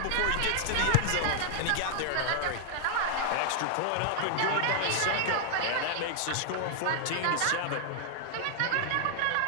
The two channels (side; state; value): both; different; correlation 0.00